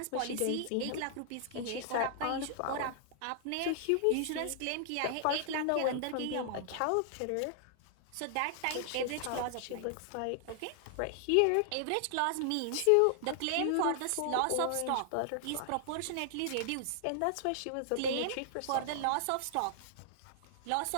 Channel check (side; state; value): both; different; correlation -0.01